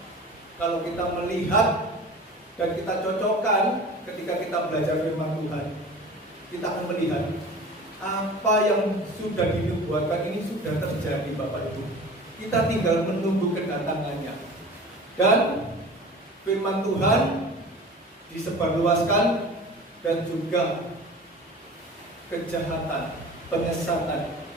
Kalau kita melihat dan kita cocokkan ketika kita belajar firman Tuhan, kita akan melihat apa yang sudah dinubuatkan ini sudah terjadi, Bapak Ibu. Kita tinggal menunggu kedatangannya. Dan firman Tuhan disebarluaskan dan juga kejahatan, penyesatan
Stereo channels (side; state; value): both; normal; correlation 0.39